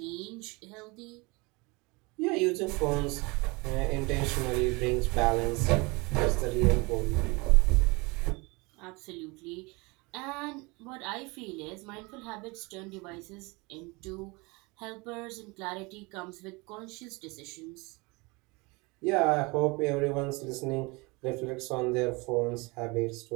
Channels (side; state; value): left; quieter; 26.4 dB